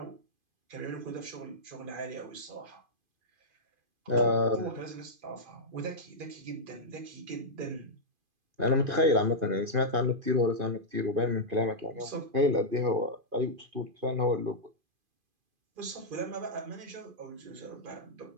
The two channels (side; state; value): left; late; 2.5 ms